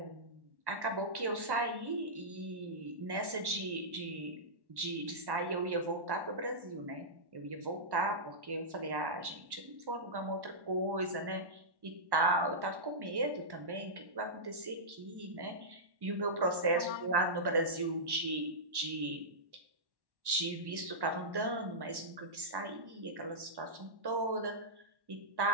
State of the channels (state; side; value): late; left; 1.1 ms